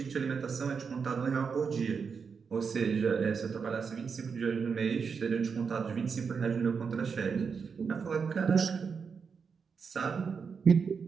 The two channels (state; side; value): quieter; left; 5.8 dB